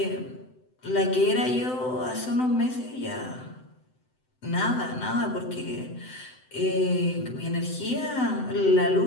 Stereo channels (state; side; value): late; right; 7.9 ms